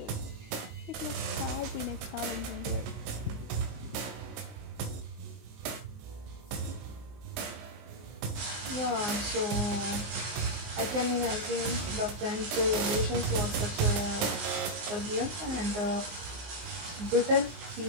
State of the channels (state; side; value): late; left; 20 ms